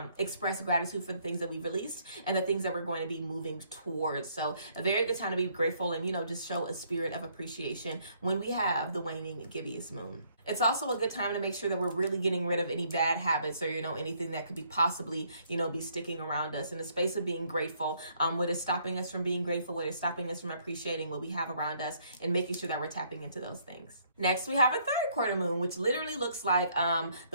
express gratitude for the things that we released and the things that we're going to be moving towards. So a very good time to be grateful and, just show a spirit of appreciation when we have the waning gibbous moon. It's also a good time to make sure that we're really getting rid of any bad habits or, anything that could be possibly, be sticking around us in the space of being grateful. What is stopping us from being grateful, what is stopping us from appreciating what we have around us and making sure that we're tapping into those things. Next, we have a third quarter moon, which literally looks like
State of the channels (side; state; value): both; inverted; correlation -0.67